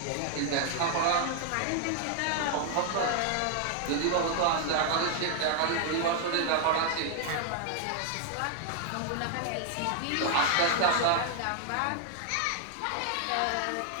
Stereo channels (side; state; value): both; different; correlation 0.00